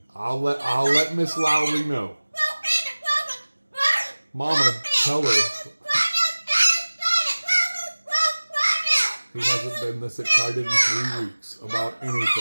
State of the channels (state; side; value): inverted; both; correlation -1.00